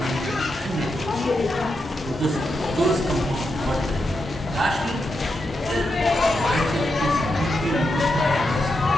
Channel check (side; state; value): both; normal; correlation 0.85